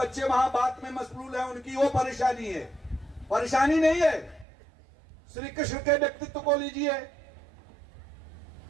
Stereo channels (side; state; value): left; drops out; at 4.5 s